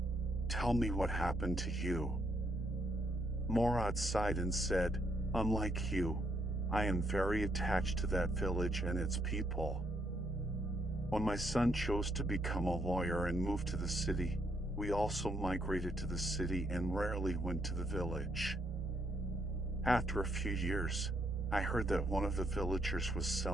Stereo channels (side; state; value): both; normal; correlation 0.74